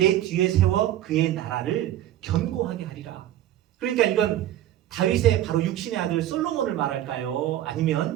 뒤에 세워 그의 나라를 견고하게 하리라. 그러니까 이건 다윗의 바로 육신의 아들 솔로몬을 말할까요?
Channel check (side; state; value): left; quieter; 12.7 dB